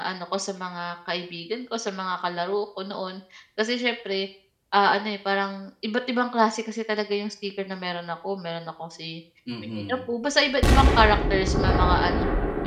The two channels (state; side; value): identical; both; correlation 1.00